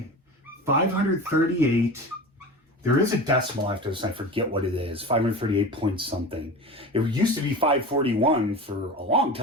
538, there is a decimal after this, I forget what it is, 538 point something. It used to be 541 for a long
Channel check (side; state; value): both; normal; correlation 0.31